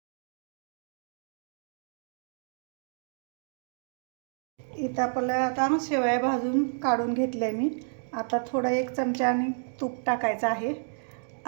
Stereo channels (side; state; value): left; silent; digital silence